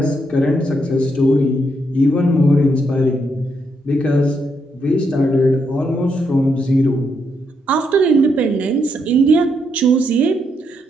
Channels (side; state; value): both; normal; correlation 0.78